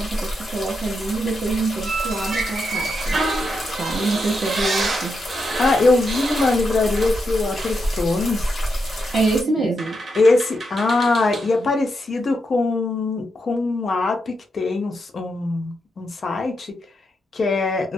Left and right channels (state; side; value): normal; both; correlation 0.84